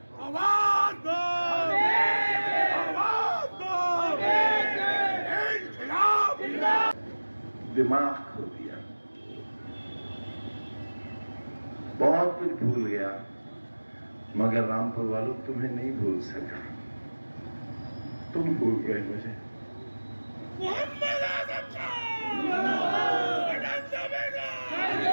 आवाज दो, आवाज दो, इनकलाब। दिमाग खो दिया, बहुत कुछ भूल गया, मगर रामपुर वालों तुम्हें नहीं भूल सका। तुम भूल गए मुझे। मोहम्मद आजम खान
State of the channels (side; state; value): both; inverted; correlation -1.00